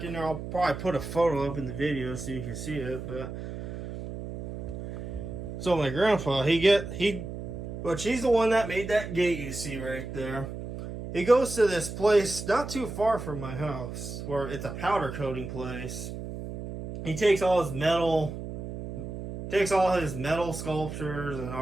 in there. I'll probably put a photo up in the video so you can see it. But so my grandpa, which he's the one that made that gate you see right there. He goes to this place not too far from my house, where it's a powder coating place. He takes all his metal sculptures and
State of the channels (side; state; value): right; noise; hum, 8 dB below the sound